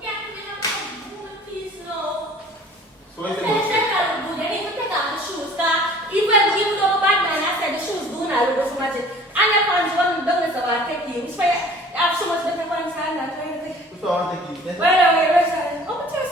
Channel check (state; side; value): normal; both; correlation 0.49